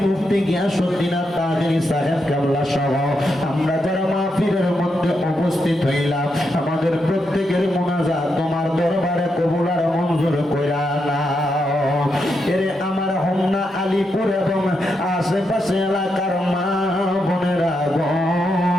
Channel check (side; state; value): both; normal; correlation 0.83